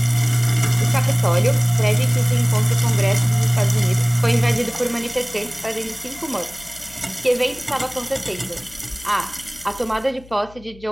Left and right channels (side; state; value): left; noise; hum, 22 dB below the sound